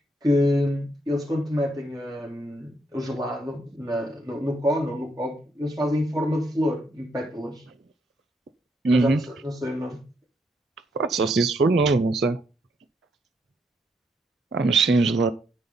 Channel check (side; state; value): both; normal; correlation 0.76